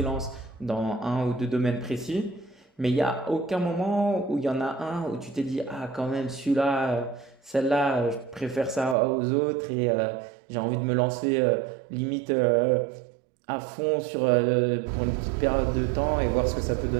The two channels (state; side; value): drops out; left; at 9.0 s